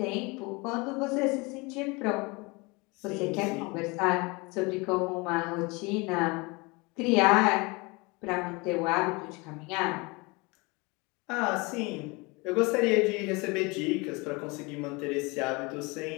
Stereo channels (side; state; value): right; quieter; 26.8 dB